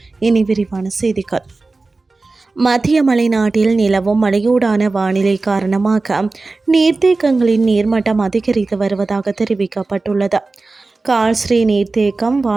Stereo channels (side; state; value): left; quieter; 3.5 dB